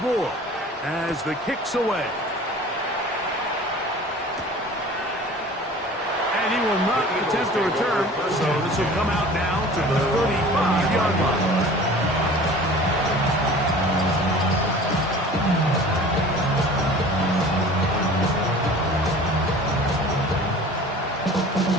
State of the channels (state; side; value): normal; both; correlation 0.43